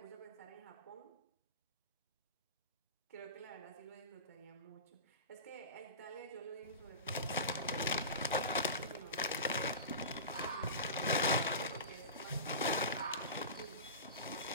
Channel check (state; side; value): inverted; both; correlation -0.30